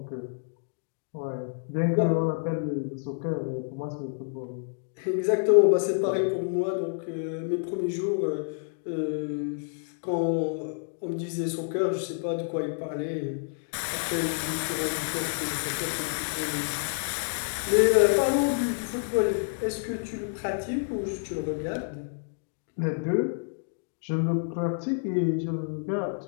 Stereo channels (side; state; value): right; silent; digital silence